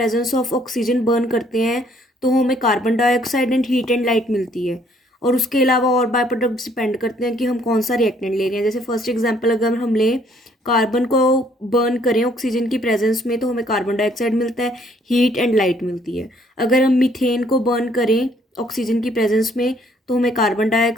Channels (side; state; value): both; normal; correlation 0.64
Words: of oxygen burn करते हैं तो हमें carbon dioxide and heat and light मिलती है। और उसके अलावा और बाय प्रोडक्ट्स डिपेंड करते हैं कि हम कौन सा रिएक्टेंट ले रहे हैं। जैसे फर्स्ट एग्जांपल अगर हम लें, कार्बन को बर्न करें ऑक्सीजन की प्रेजेंस में तो हमें कार्बन डाइऑक्साइड मिलता है, हीट एंड लाइट मिलती है। अगर हम मीथेन को बर्न करें ऑक्सीजन की प्रेजेंस में तो हमें carbon